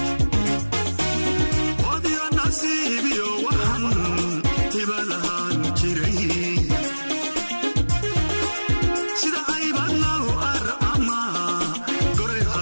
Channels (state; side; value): inverted; both; correlation -1.00